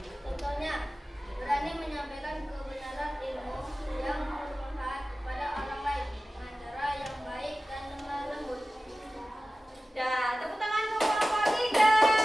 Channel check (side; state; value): both; normal; correlation 0.96